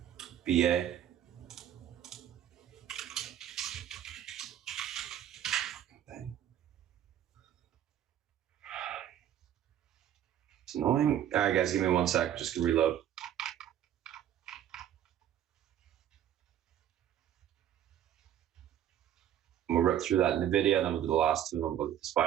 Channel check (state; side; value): quieter; left; 10.7 dB